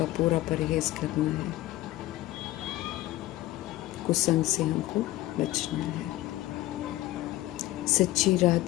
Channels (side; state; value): right; quieter; 16.6 dB